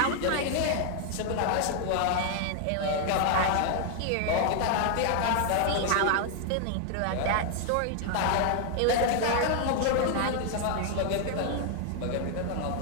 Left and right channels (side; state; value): both; different; correlation 0.00